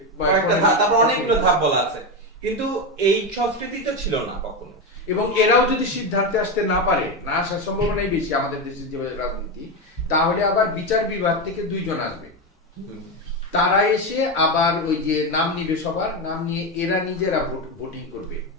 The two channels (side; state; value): both; normal; correlation 0.13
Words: কয়েকটা ধাপ, তারপর অনেকগুলো ধাপ বলা আছে, কিন্তু এই সংস্কৃতি তো ছিল না কখনো। এবং এরাও যদি সিদ্ধান্তে আসতে না পারে, না আসার সম্ভাবনাই বেশি আমাদের দেশের যে রাজনীতি, তাহলে আবার বিচার বিভাগ থেকে 2 জন আসবে, তারা এসে আবার ওই যে নাম নিবে, সবার নাম নিয়ে এরা নিজেরা ভোটিং করবে।